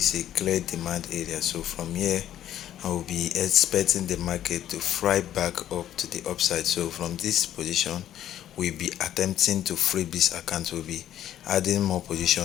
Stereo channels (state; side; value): quieter; right; 11.6 dB